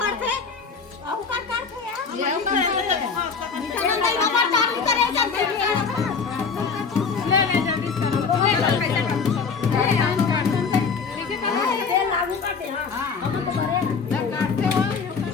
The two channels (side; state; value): right; quieter; 5.4 dB